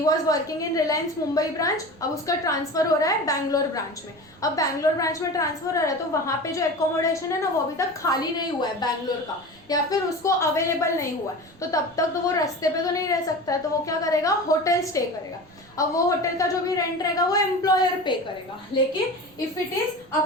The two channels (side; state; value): right; noise; rumble, 28 dB below the sound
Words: was working in Reliance Mumbai branch, अब उसका ट्रांसफर हो रहा है बैंगलोर ब्रांच में। अब बैंगलोर ब्रांच में ट्रांसफर हो रहा है तो वहां पे जो एकोमोडेशन है ना, वो अभी तक खाली नहीं हुआ है बैंगलोर का, या फिर उसको अवेलेबल नहीं हुआ है, तो तब तक तो वो रास्ते पे तो नहीं रह सकता है, तो वो क्या करेगा? होटल स्टे करेगा। अब वो होटल का जो भी रेंट रहेगा वो एम्प्लॉयर पे करेगा, लेकिन if it is